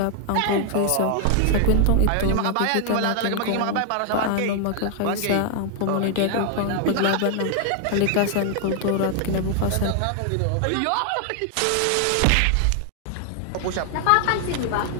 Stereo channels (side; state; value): both; different; correlation 0.00